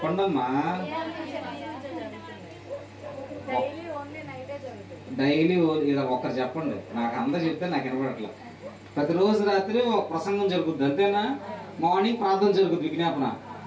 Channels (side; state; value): both; identical; correlation 1.00